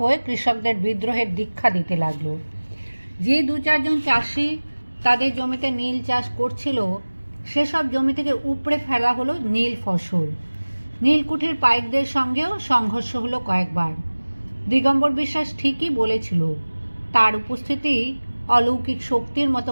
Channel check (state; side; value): inverted; both; correlation -1.00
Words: কৃষকদের বিদ্রোহের দীক্ষা দিতে লাগলো। যে 2-4 জন চাষি তাদের জমিতে নীল চাষ করছিল, সেসব জমি থেকে উপড়ে ফেলা হলো নীল ফসল। নীলকুঠির পাইকদের সঙ্গেও সংঘর্ষ হলো কয়েকবার। দিগম্বর বিশ্বাস ঠিকই বলেছিল, তার উপস্থিতি অলৌকিক শক্তির মতো